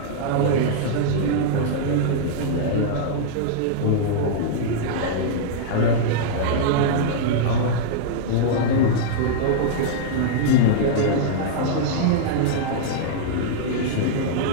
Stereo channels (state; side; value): different; both; correlation -0.02